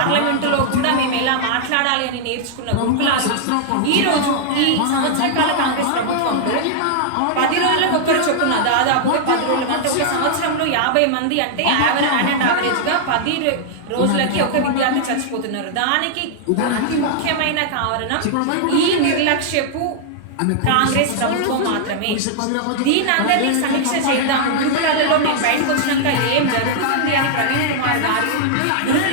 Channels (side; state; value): both; different; correlation -0.01